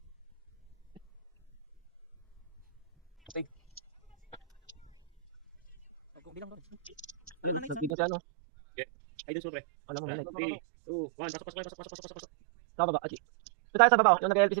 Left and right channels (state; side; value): drops out; left; at 8.0 s